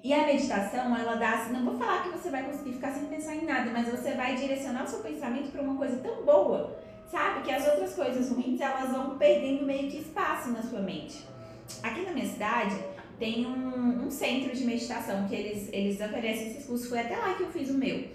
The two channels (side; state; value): both; identical; correlation 1.00